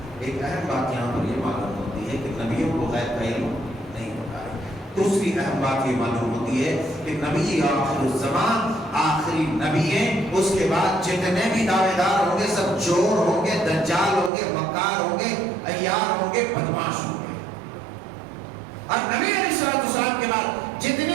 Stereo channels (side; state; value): left; drops out; at 14.3 s